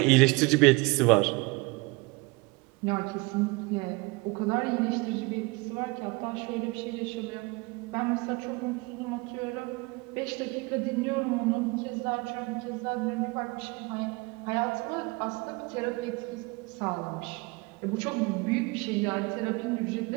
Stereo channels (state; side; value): quieter; left; 25.9 dB